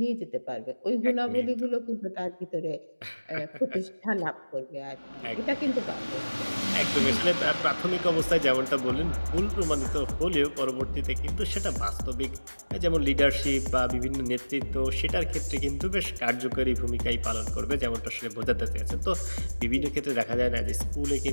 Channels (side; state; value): both; inverted; correlation -1.00